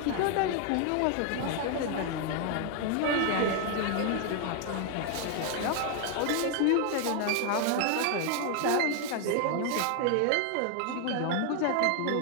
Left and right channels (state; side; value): different; both; correlation 0.00